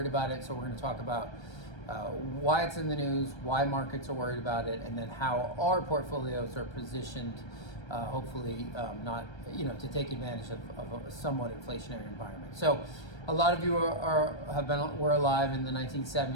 about it. So we're going to talk about why it's in the news, why markets are worried about it, and then how our portfolios are positioned, hopefully not, to take advantage of a somewhat inflationary environment. So a lot of you were alive in the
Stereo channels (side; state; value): right; late; 1.3 ms